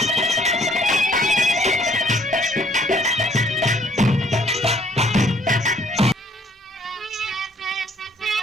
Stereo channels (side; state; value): both; normal; correlation 0.62